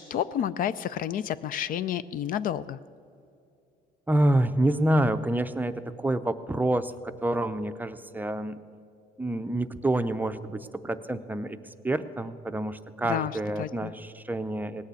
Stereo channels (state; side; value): normal; both; correlation 0.78